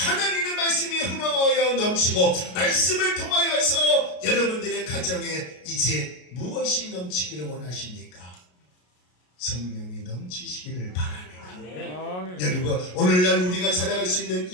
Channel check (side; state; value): right; late; 33 ms